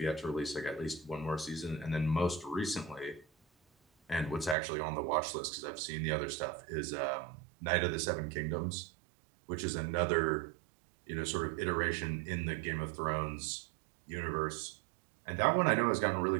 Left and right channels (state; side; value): drops out; left; at 4.5 s